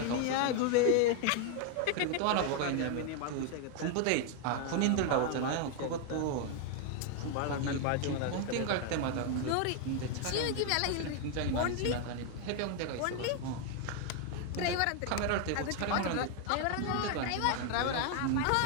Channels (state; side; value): different; both; correlation 0.01